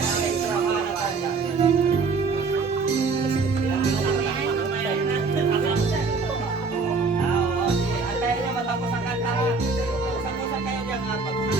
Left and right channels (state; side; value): quieter; left; 4.4 dB